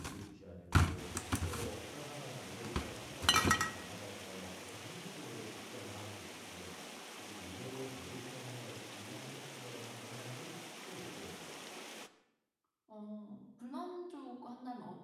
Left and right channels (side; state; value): both; identical; correlation 1.00